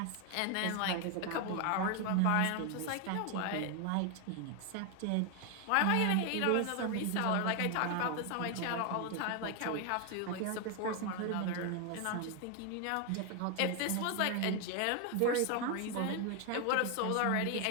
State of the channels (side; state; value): both; different; correlation 0.01